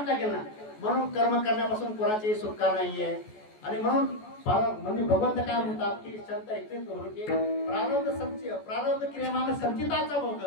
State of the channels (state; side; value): late; right; 14 ms